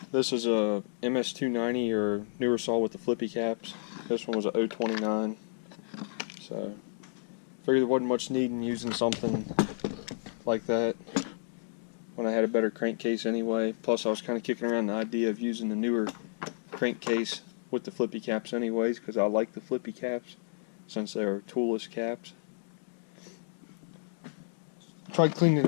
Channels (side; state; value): right; silent; digital silence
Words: This is a MS290 or newer saw with the flippy caps. This one was a 029. So, figured there wasn't much need in using something like that when I had a better crankcase anyway. Plus, I was kind of kicking around the idea of using the newer crankcase with the flippy caps anyways, because I like the flippy caps since they're toolless caps. Tried cleaning it